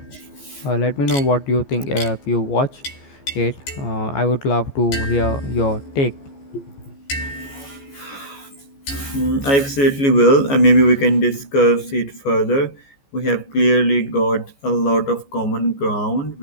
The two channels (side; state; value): right; late; 14 ms